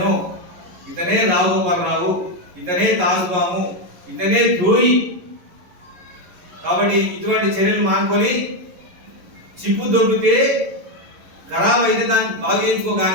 ఇతనే రావుగోపాలరావు, ఇతనే తాజుబాము, ఇతనే ద్రోహి. కాబట్టి ఇటువంటి చర్యలు మానుకొని చిప్పు దొబ్బితే ఖరాబ్ అయితే దాన్ని బాగు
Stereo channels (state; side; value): late; left; 11 ms